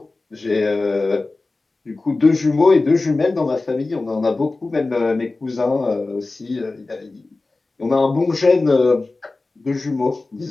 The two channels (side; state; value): right; quieter; 3.4 dB